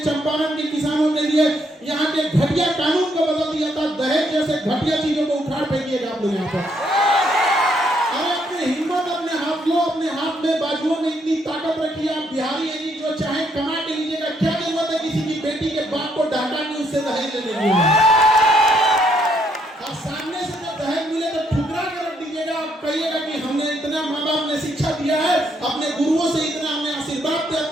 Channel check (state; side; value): normal; both; correlation 0.72